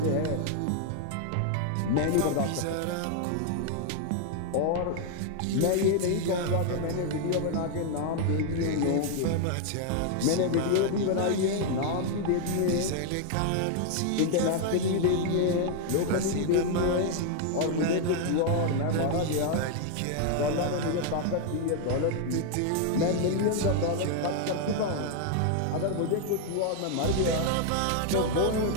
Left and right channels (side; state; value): both; different; correlation 0.00